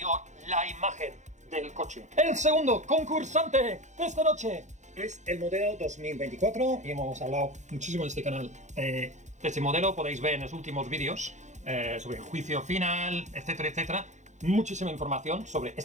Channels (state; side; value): late; left; 0.34 ms